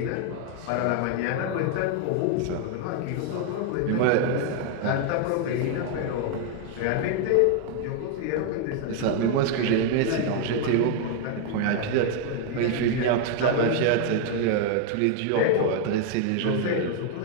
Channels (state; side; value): different; both; correlation 0.01